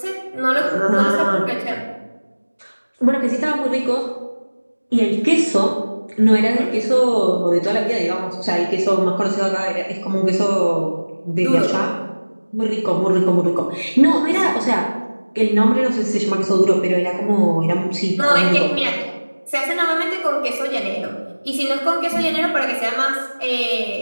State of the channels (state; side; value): inverted; both; correlation -1.00